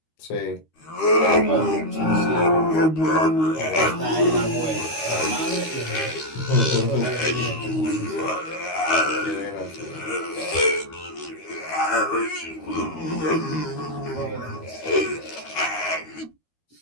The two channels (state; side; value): late; right; 13 ms